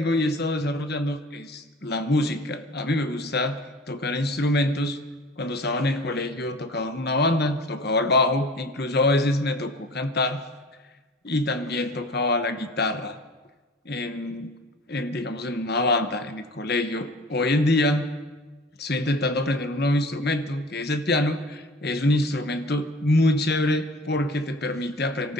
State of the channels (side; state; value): both; normal; correlation 0.42